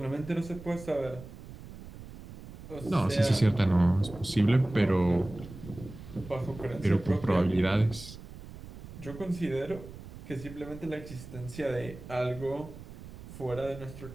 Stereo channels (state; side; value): noise; right; rumble, 14 dB below the sound